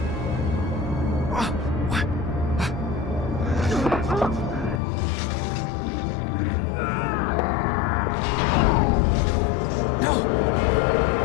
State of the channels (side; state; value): right; drops out; at 4.8 s